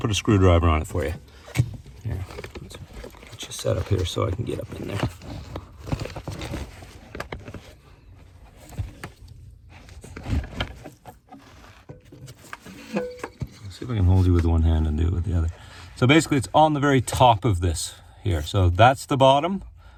a screwdriver on it for you. Here, let's get you set up here so I can get up in there. Let's see if I can hold you with one hand and do it with the other. So basically it's on the very top of this here. So that's the bottom.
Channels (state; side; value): identical; both; correlation 1.00